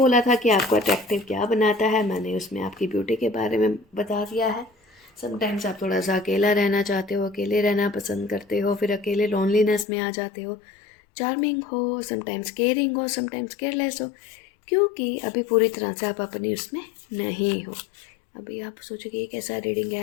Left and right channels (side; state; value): right; drops out; at 9.9 s